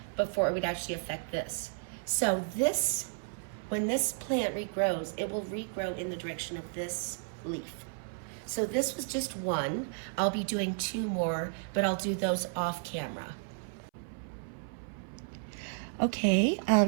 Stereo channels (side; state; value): left; silent; 56 dB below the other